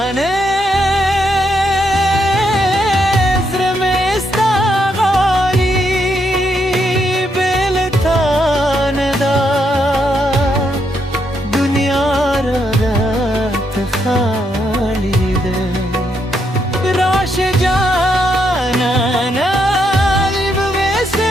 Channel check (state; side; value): normal; both; correlation 0.78